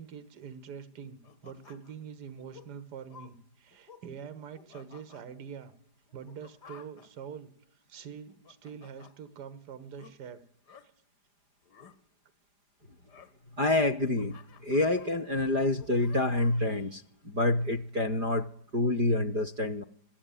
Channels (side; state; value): left; late; 4.9 ms